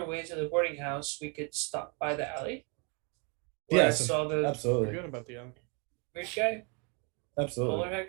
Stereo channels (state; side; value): quieter; left; 33.5 dB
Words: way to the boarding house, we could stop by the alley. Where I Yes, saw the absolutely. Forget about the weird guy. Absolutely. bowler hat